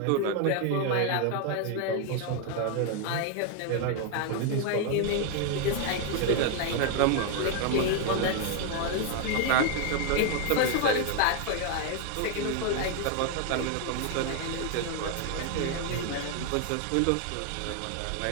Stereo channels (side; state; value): both; different; correlation 0.01